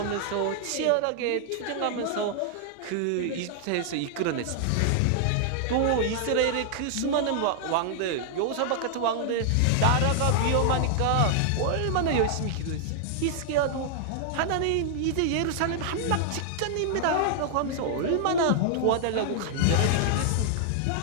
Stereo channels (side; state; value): both; different; correlation 0.00